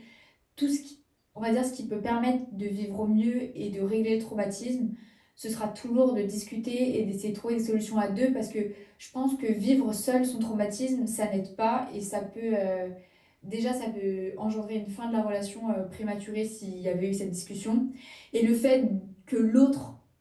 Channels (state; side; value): identical; both; correlation 1.00